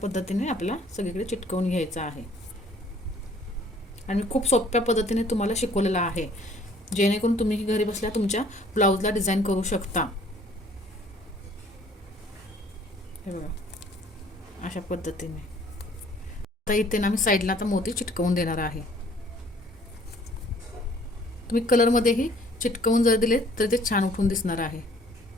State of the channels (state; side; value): normal; both; correlation 0.57